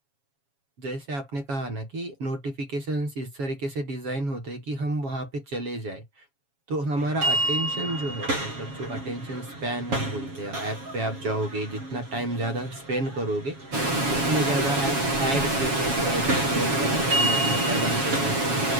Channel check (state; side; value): late; left; 7.2 ms